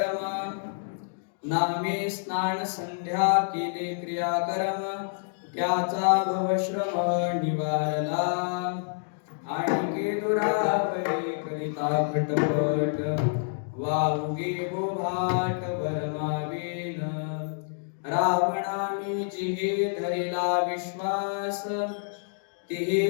नामे स्नान संध्या केले क्रियाकर्म त्याचा भवश्रम निवारला आणि दुरावले करिता खटपट वाहुगे गोभाट भरमावेन रावणाने जिहे धरेला विश्वास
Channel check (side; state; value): right; silent; digital silence